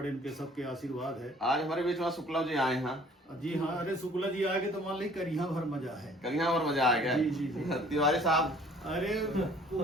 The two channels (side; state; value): both; normal; correlation 0.54